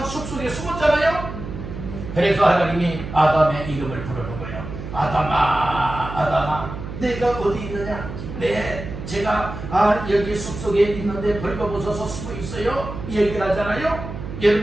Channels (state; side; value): noise; right; hum, 9 dB below the sound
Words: 숲속에 숨었잖아요. 그래서 하나님이 아담의 이름을 부르는 거예요. 아담아, 아담아, 내가 어디 있느냐? 네, 제가 여기 숲속에 있는데 벌거벗어서 숨어 있어요. 얘기를 하잖아요.